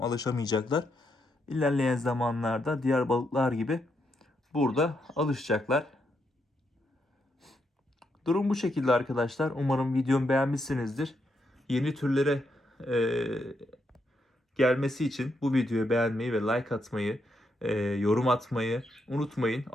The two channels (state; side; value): normal; both; correlation 0.80